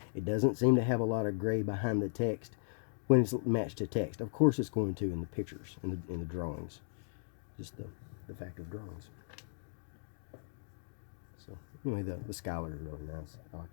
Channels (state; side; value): silent; right; digital silence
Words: It doesn't seem to have a lot of gray behind the text when it's matched to text. Of course it's going to in the pictures, in the drawings. Just the fact of drawings. So anyway, the Schuyler is really nice. I like